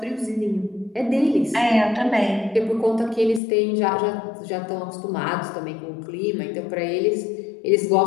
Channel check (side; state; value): right; drops out; at 3.4 s